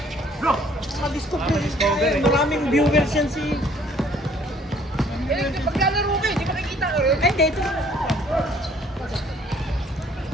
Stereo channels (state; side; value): normal; both; correlation 0.59